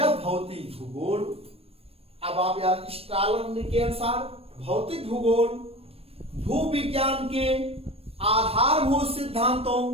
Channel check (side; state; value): left; late; 0.28 ms